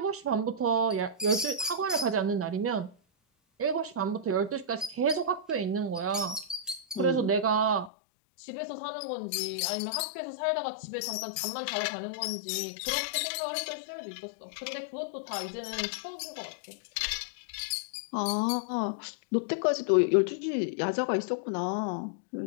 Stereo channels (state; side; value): drops out; right; at 7.9 s